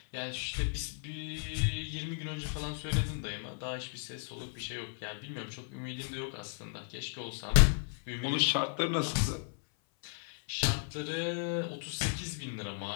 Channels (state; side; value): silent; right; 55 dB below the other